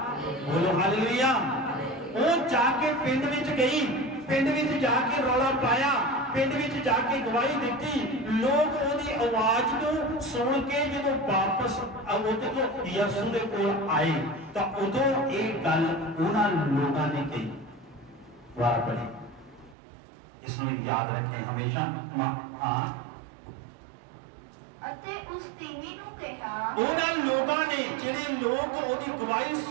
ਬੋਲੋ ਹਾਲੇਲੂਇਆ। ਉਹ ਜਾ ਕੇ ਪਿੰਡ ਵਿੱਚ ਗਈ, ਪਿੰਡ ਵਿੱਚ ਜਾ ਕੇ ਰੌਲਾ ਪਾਇਆ, ਪਿੰਡ ਵਿੱਚ ਜਾ ਕੇ ਗਵਾਹੀ ਦਿੱਤੀ। ਲੋਕ ਉਹਦੀ ਆਵਾਜ਼ ਨੂੰ ਸੁਣ ਕੇ ਜਦੋਂ ਵਾਪਸ ਉਹਦੇ ਤੋਂ ਯਿਸੂ ਦੇ ਕੋਲ ਆਏ ਤਾਂ ਉਦੋਂ ਇਹ ਗੱਲ ਉਹਨਾਂ ਲੋਕਾਂ ਨੇ ਕਹੀ। ਵਾਰ ਪੜੀ, इसमें याद रखें हमेशा। हाँ, ਅਤੇ ਉਸ ਤੀਵੀ ਨੂੰ ਕਿਹਾ, ਉਹਨਾਂ ਲੋਕਾਂ ਨੇ ਜਿਹੜੇ ਲੋਕ ਉਹਦੀ ਗਵਾਹੀ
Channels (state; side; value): drops out; left; at 19.8 s